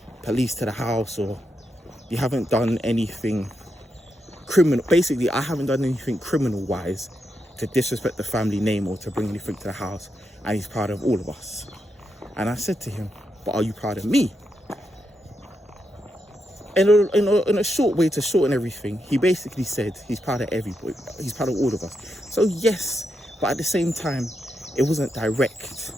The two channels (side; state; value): both; normal; correlation 0.84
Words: police to the house, or you haven't done anything criminal." Basically, I haven't done anything criminal-wise to disrespect the family name or to bring anything to the house, and he's proud of all of us. And I said to him, "But are you proud of me?" In a short way to shorten everything, he basically said he's proud of everybody. He's proud of all of us. So yes, but at the same time, it wasn't direct.